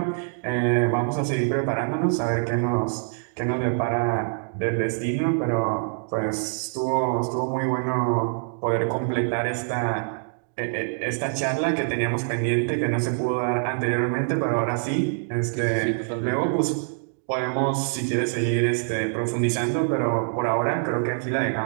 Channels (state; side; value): silent; left; digital silence